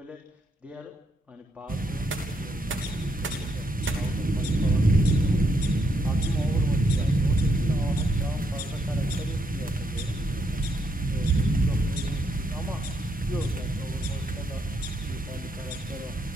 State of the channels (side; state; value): both; normal; correlation 0.77